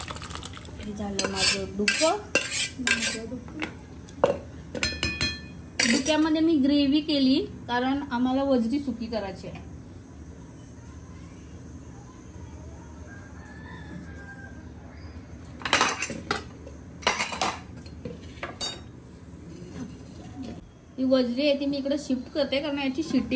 झालं माझं डुकं. डुक्यामध्ये मी ग्रेव्ही केली कारण आम्हाला वजरी सुकी करायची आहे. ही वजरी आहे ती मी इकडे शिफ्ट करते कारण याची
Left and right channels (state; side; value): identical; both; correlation 1.00